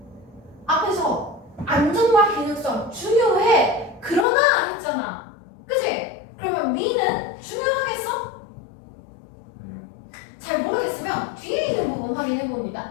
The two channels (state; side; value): drops out; right; at 4.2 s